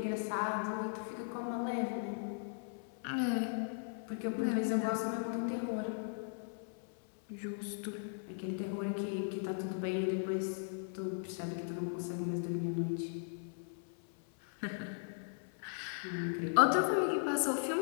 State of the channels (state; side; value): silent; right; 53 dB below the other